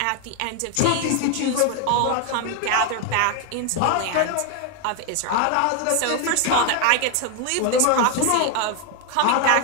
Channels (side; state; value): both; different; correlation 0.01